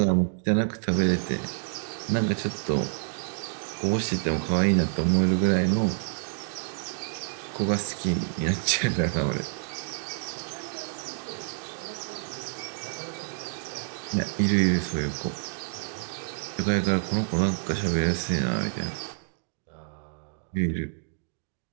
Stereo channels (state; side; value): silent; left; digital silence